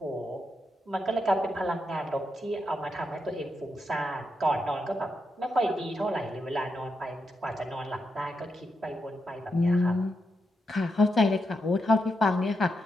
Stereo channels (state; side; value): normal; both; correlation 0.84